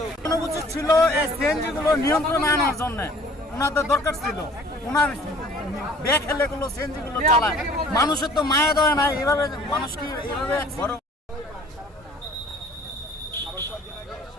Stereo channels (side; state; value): both; normal; correlation 0.52